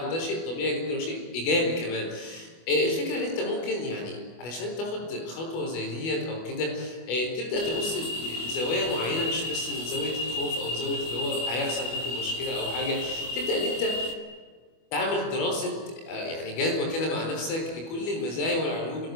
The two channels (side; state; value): right; late; 25 ms